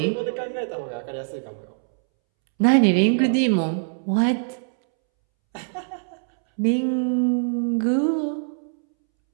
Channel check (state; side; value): silent; left; 63 dB below the other